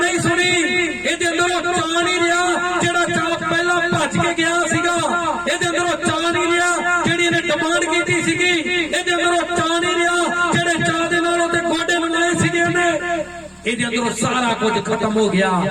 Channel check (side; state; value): both; identical; correlation 1.00